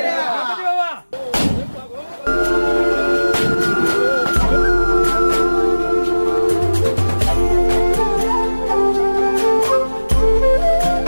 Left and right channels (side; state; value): both; inverted; correlation -1.00